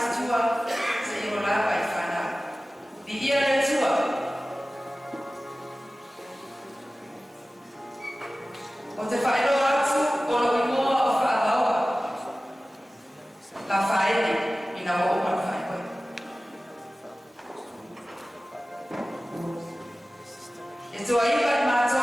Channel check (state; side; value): normal; both; correlation 0.97